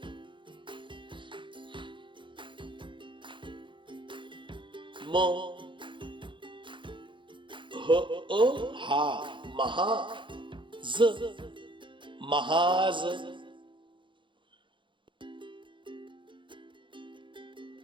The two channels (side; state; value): left; late; 0.24 ms